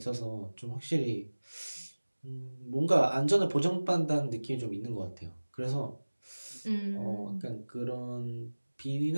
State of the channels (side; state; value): both; inverted; correlation -1.00